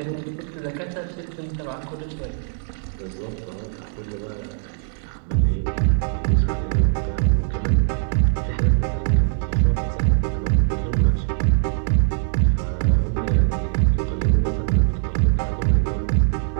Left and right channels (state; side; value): silent; left; digital silence